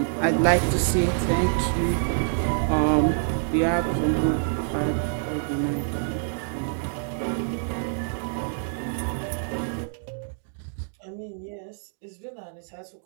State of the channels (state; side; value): silent; left; digital silence